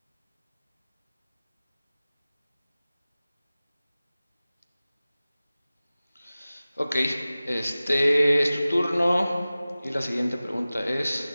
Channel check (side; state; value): both; inverted; correlation -0.97